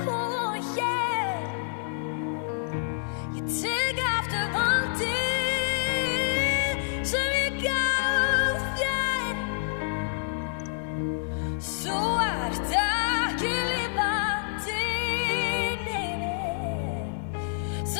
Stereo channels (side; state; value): right; silent; 59 dB below the other